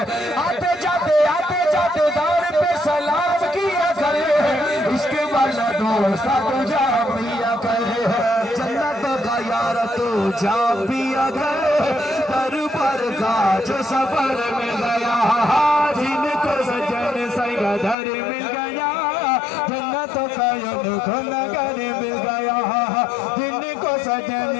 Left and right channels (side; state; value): right; drops out; at 17.9 s